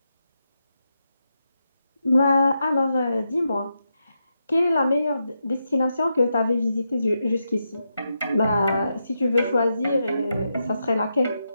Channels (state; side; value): inverted; both; correlation -0.85